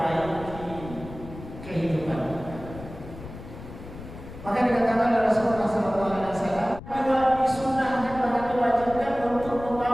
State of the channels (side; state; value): left; noise; rumble, 14 dB below the sound